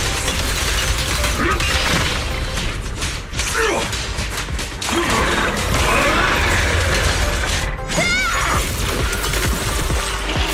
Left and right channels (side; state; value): both; identical; correlation 1.00